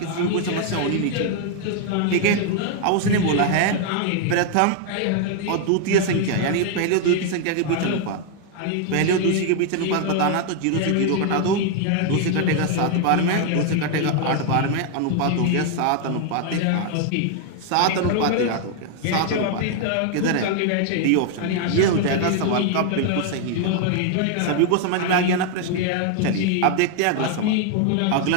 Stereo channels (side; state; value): both; different; correlation 0.00